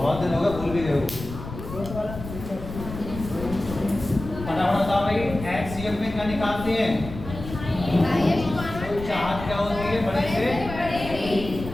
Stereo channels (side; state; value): left; noise; rumble, 10 dB below the sound